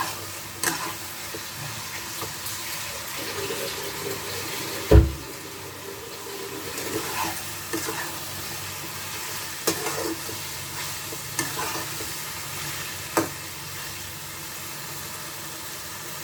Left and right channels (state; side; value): identical; both; correlation 1.00